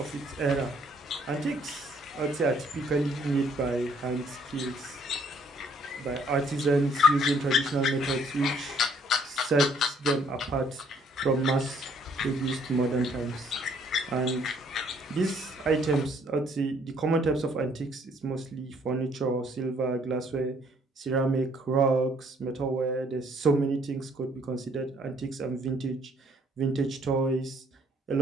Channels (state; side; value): normal; both; correlation 0.64